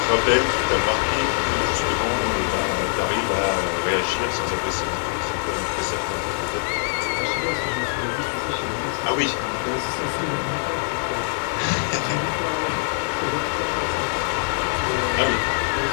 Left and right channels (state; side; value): silent; right; 63 dB below the other